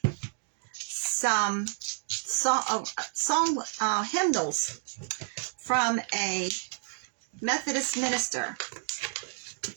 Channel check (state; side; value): silent; left; 58 dB below the other